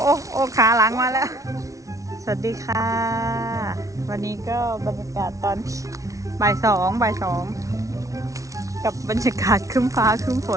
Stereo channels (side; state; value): left; late; 0.16 ms